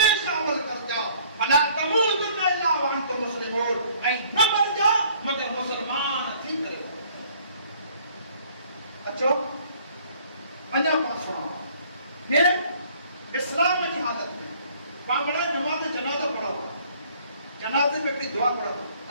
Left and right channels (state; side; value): inverted; both; correlation -0.57